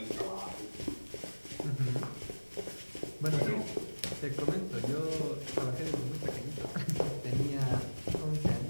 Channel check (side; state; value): both; inverted; correlation -1.00